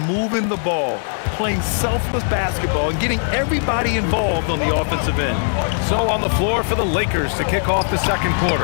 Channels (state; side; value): silent; right; 66 dB below the other